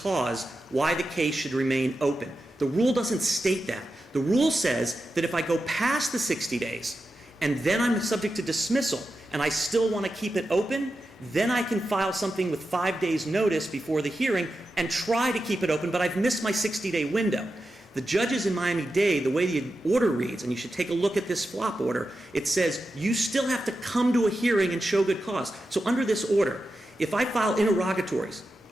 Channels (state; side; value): normal; both; correlation 0.90